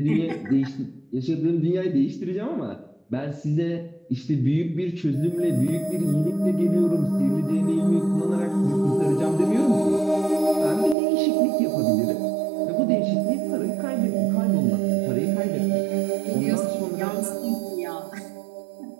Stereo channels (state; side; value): drops out; left; at 11.0 s